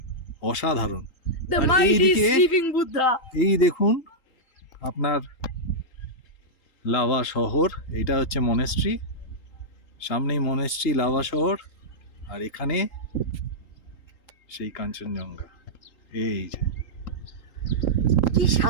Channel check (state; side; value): late; right; 3.8 ms